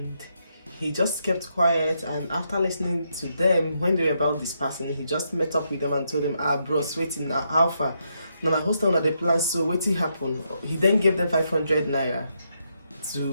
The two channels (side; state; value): both; inverted; correlation -0.80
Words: he just kept quiet. And after listening to them, when they were about dispersing, he just met up with them and told them, bros, waiting now, alpha. Now my hostel na the plan, so waiting happen. He then gave them 500 naira to